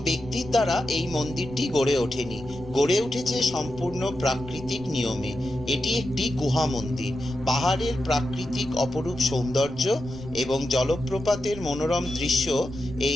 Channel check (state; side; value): noise; right; rumble, 16 dB below the sound